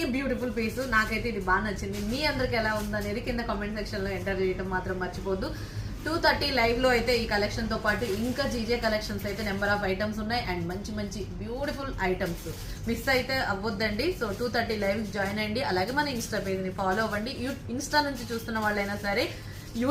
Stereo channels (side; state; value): both; identical; correlation 1.00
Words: beautiful piece. నాకైతే ఇది బాగా నచ్చింది. మీ అందరికి ఎలా ఉందనేది కింద కామెంట్ సెక్షన్ లో ఎంటర్ చేయడం మాత్రం మర్చిపోద్దు. 2:30 లైవ్ లో అయితే ఈ కలెక్షన్ తో పాటు ఇంకా జీజే కలెక్షన్స్ అయితే నెంబర్ ఆఫ్ ఐటమ్స్ ఉన్నాయి. అండ్ మంచి మంచి బ్యూటిఫుల్ ఐటమ్స్ మిస్ అయితే అవ్వద్దండి. సో 2:30 లైవ్ జాయిన్ అయ్యండి. అలాగే మన ఇన్స్టా పేజ్ ని ఫాలో అవ్వండి. ఇన్స్టా నుంచి చూస్తున్న వాళ్ళైనా సరే